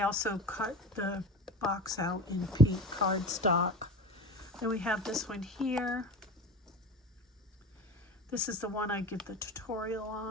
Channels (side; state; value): both; normal; correlation 0.31